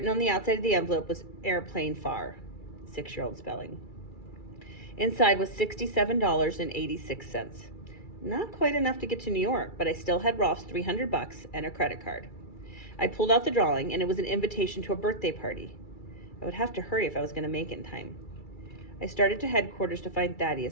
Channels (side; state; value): right; late; 2.3 ms